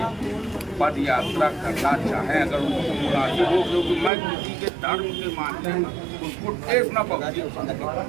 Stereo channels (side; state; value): left; drops out; at 4.1 s